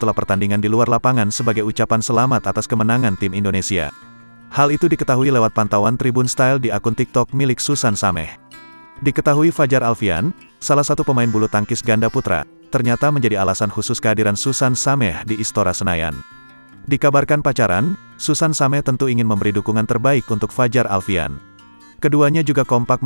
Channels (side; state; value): both; inverted; correlation -1.00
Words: pertandingan di luar lapangan sebagai ucapan selamat atas kemenangan tim Indonesia. Hal itu diketahui lewat pantauan Tribun Style di akun TikTok milik Susan Sameh. Diketahui Fajar Alfian, salah satu pemain bulu tangkis ganda putra, ternyata menjadi alasan khusus kehadiran Susan Sameh di Istora Senayan. Dikabarkan pacaran, Susan Sameh tentu ingin memberi dukungan terbaik untuk Fajar Alfian. Keduanya juga kompak